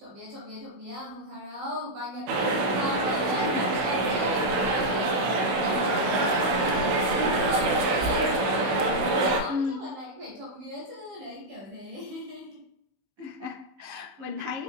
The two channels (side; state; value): left; late; 16 ms